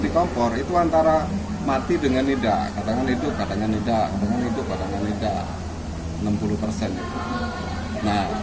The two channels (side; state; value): both; identical; correlation 1.00